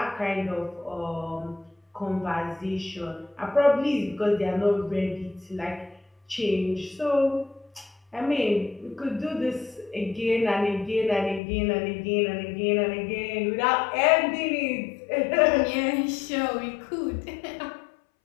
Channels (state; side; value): drops out; right; at 11.4 s